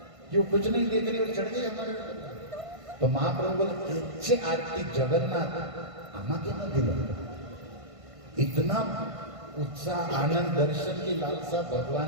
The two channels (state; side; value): late; left; 1.5 ms